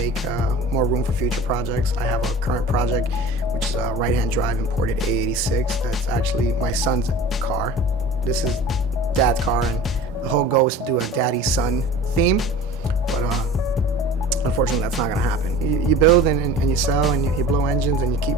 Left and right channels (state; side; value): normal; both; correlation 0.40